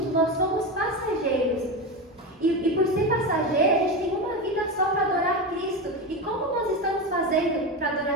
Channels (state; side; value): normal; both; correlation 0.18